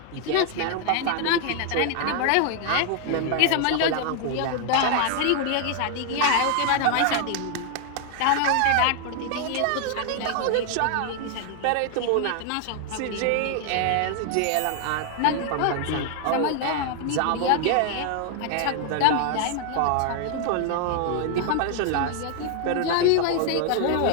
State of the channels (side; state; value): both; different; correlation 0.00